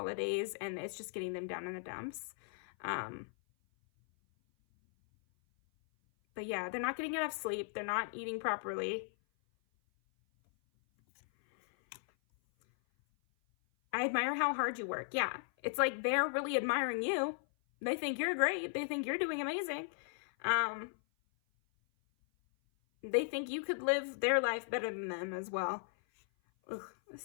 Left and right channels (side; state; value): right; silent; 53 dB below the other